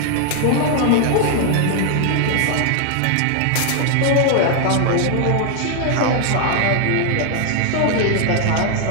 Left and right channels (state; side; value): different; both; correlation 0.00